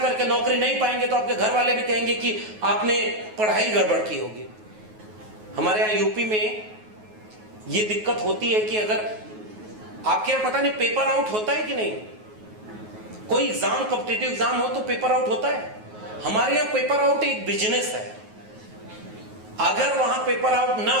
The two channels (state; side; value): late; left; 9.4 ms